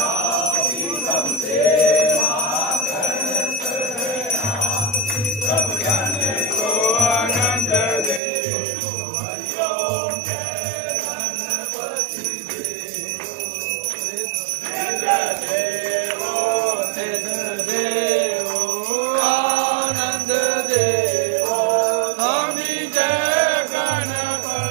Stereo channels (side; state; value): left; drops out; at 8.2 s